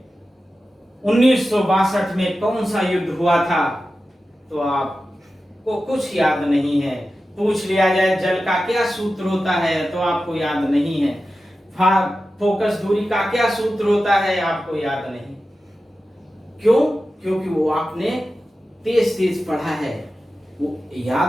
1962 में कौन सा युद्ध हुआ था, तो आपको कुछ याद नहीं है। पूछ लिया जाए जल का क्या सूत्र होता है तो आपको याद नहीं है। फोकस दूरी का क्या सूत्र होता है आपको याद नहीं। क्यों? क्योंकि वो आपने तेज तेज पढ़ा है, वो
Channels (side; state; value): both; normal; correlation 0.93